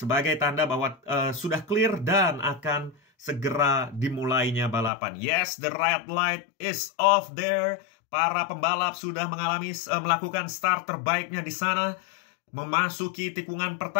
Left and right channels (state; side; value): drops out; right; at 4.9 s